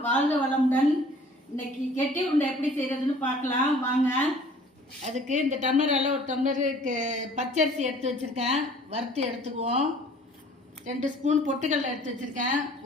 வாழ்க வளமுடன். இன்னைக்கு கெட்டி உருண்டை எப்படி செய்யறதுன்னு பார்க்கலாம் வாங்க. அதுக்கு இந்த டம்ளரால் ஒரு டம்ளருக்கு பச்சரிசி எடுத்து வச்சுருக்கேன், வறுத்து எடுத்துக்குவோம். 2 ஸ்பூன் பொட்டுக்கடலை எடுத்து வச்சுருக்கேன்,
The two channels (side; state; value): both; normal; correlation 0.51